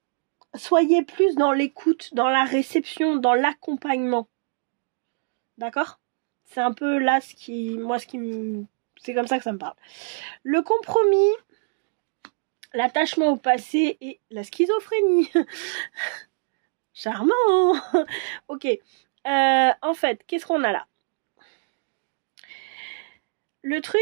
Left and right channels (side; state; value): left; silent; digital silence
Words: soyez plus dans l'écoute, dans la réception, dans l'accompagnement. D'accord? C'est un peu là c'est comme ça que ça me parle. Le compromis, l'attachement au passé et la schizophrénie. Charmant. Ok. En fait, qu'est-ce qu'on a là? Le